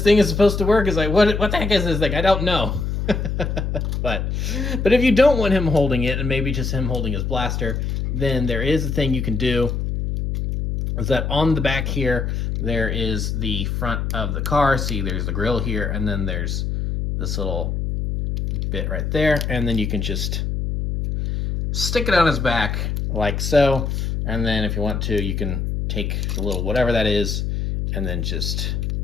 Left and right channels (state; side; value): noise; left; hum, 1 dB below the sound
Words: thing is supposed to work? It's like, what the heck is this thing? I don't know. But if you don't want him holding it, and maybe just him holding his blaster, then there is a thing you can do. Is that on the back here, there is the front of the car. See, there's the grill here, and then there's this little bit right there, and then you can just stick it on his back like so, and then if you want to, you can take the little whatever that is, and then just